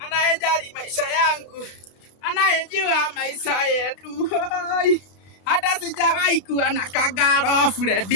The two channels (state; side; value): late; right; 33 ms